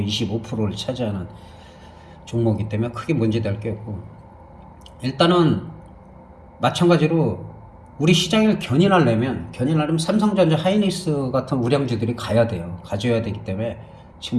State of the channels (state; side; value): identical; both; correlation 1.00